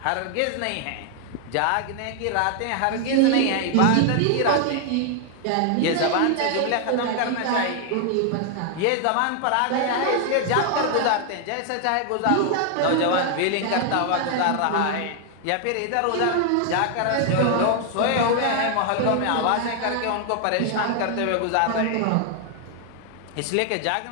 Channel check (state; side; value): different; both; correlation 0.00